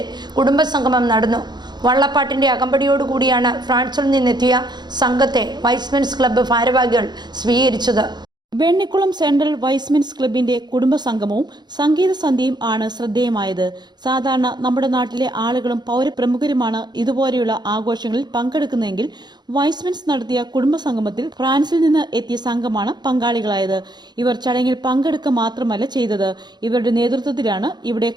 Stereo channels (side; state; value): left; late; 0.21 ms